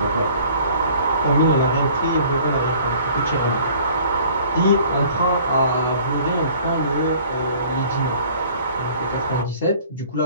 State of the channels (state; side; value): inverted; both; correlation -0.52